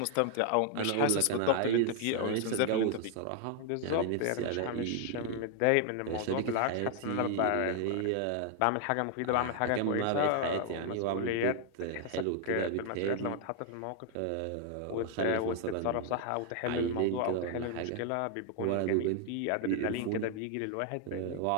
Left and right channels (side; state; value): both; different; correlation 0.00